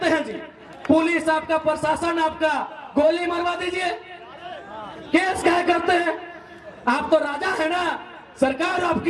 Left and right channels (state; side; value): identical; both; correlation 1.00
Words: हैं जी? पुलिस आपका, प्रशासन आपका, गोली मरवा दीजिए। केस क्या करते हैं? आप तो राजा है ना, सरकार